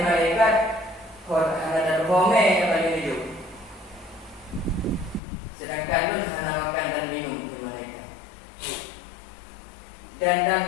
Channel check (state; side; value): drops out; right; at 5.2 s